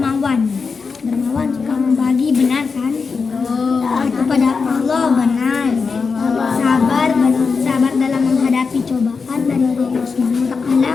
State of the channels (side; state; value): right; quieter; 5.0 dB